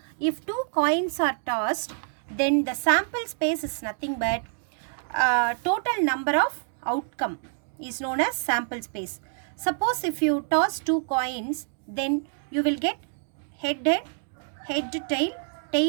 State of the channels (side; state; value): left; silent; 60 dB below the other